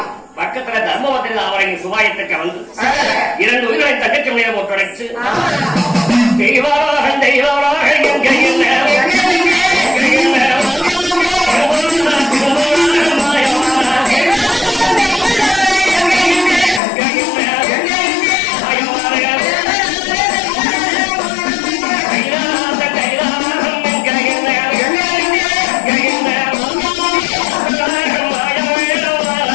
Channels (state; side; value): drops out; right; at 16.8 s